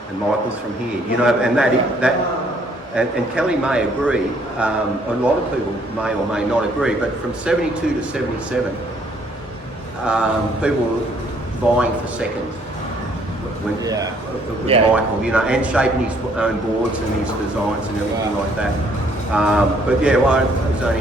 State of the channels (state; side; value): normal; both; correlation 0.64